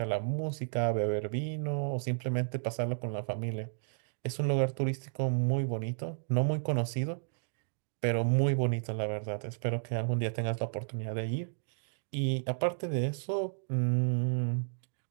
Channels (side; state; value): left; silent; digital silence